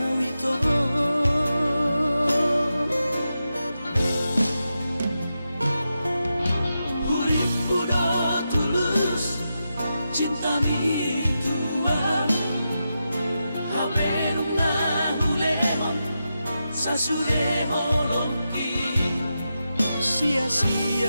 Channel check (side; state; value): both; inverted; correlation -0.88